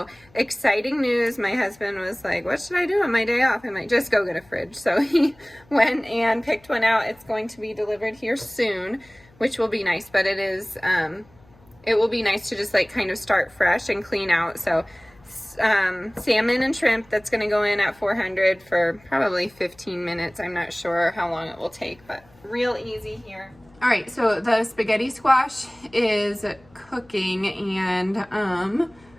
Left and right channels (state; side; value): noise; left; hum, 29 dB below the sound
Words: exciting news. My husband was like, what should I do on my day off? I'm like, just go get a fridge. So he went and picked one out. It's going to be delivered here soon, which will be nice, but it will be nice to just like kind of start fresh and clean out. So salmon and shrimp, that's going to go in at 400 for probably 15 minutes. I'm not sure how long it will take, but real easy here. All right, so the spaghetti squash is cooking and I